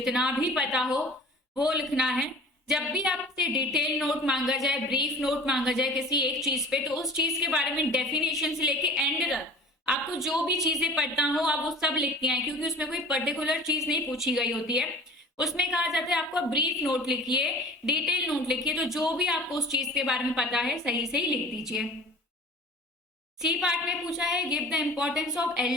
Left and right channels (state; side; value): normal; both; correlation 0.42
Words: भी पता हो वो लिखना है। जब भी आपसे डिटेल नोट मांगा जाए, ब्रीफ नोट मांगा जाए किसी एक चीज पे, तो उस चीज के बारे में डेफिनेशन से लेके एंड तक आपको जो भी चीजें पता हो आप वो सब लिखती हैं, क्योंकि उसमें कोई पर्टिकुलर चीज नहीं पूछी गई होती है। उसमें कहा जाता है आपको ब्रीफ नोट लिखिए, डिटेल नोट लिखिए, तो जो भी आपको उस चीज के बारे में पता है सही से ही लिख दीजिए। सी पार्ट में पूछा है give the importance of